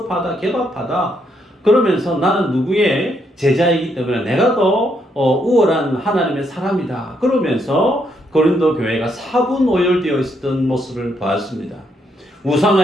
게바파다 그러면서 나는 누구의 제자이기 때문에 내가 더 우월한 하나님의 사람이다 그러면서 고린도 교회가 사분오열되어 있었던 모습을 보았습니다.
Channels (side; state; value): both; normal; correlation 0.75